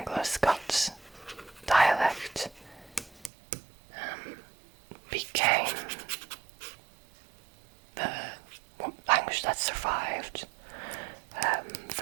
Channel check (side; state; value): left; drops out; at 3.3 s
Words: dialect, became the language that survived